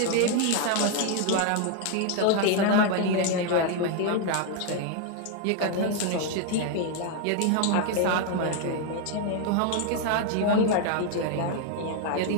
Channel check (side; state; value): both; different; correlation 0.01